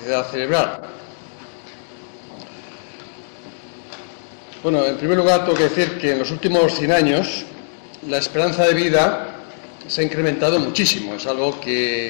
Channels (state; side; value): silent; right; digital silence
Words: cerebral. Bueno, en primer lugar tengo que decir que en los últimos 100 años la esperanza de vida se ha incrementado muchísimo, es algo